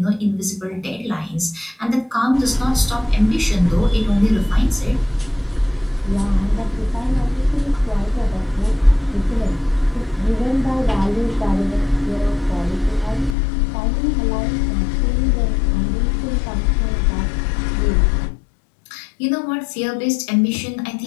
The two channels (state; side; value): drops out; right; at 13.4 s